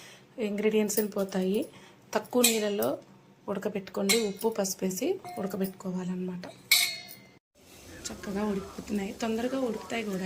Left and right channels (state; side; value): identical; both; correlation 1.00